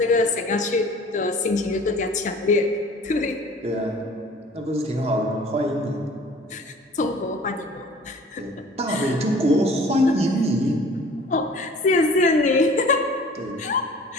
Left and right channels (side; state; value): both; normal; correlation 0.48